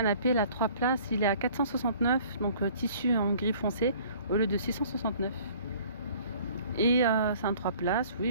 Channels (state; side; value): inverted; both; correlation -0.53